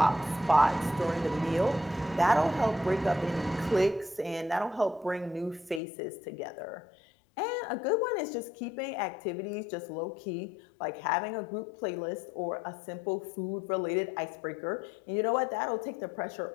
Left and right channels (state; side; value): drops out; right; at 5.8 s